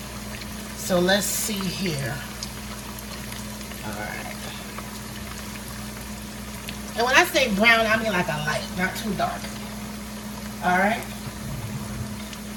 So let's see here. All right. And when I say brown, I mean like a light, not too dark. All right.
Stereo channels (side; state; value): both; identical; correlation 1.00